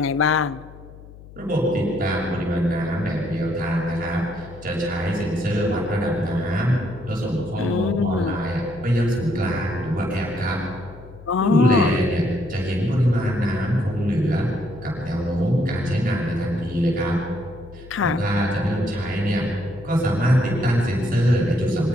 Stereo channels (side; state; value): left; noise; hum, 18 dB below the sound